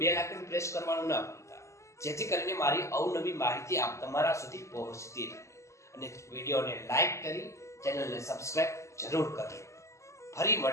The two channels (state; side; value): late; right; 0.14 ms